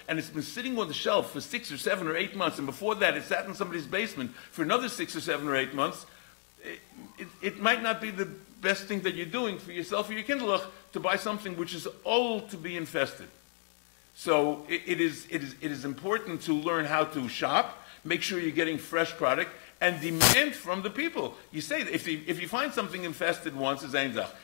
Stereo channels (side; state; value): right; silent; 56 dB below the other